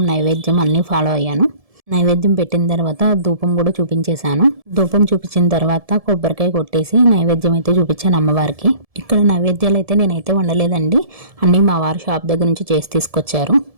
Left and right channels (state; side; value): late; left; 1.7 ms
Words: నైవేద్యం అన్నీ ఫాలో అయ్యాను. నైవేద్యం పెట్టిన తర్వాత ధూపం కూడా చూపించేశాను. ధూపం చూపించిన తర్వాత కొబ్బరికాయ కొట్టేసి నైవేద్యం అయితే చూపించాను అమ్మవారికి. ఇక్కడ నైవేద్యాలు అయితే నేనైతే వండలేదండి, అన్నీ మా వారు షాప్ దగ్గర నుంచి చేసి తీసుకొచ్చారు.